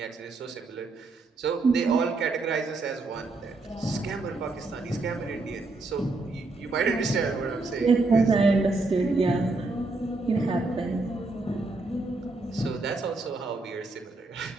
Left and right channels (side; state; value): left; quieter; 3.4 dB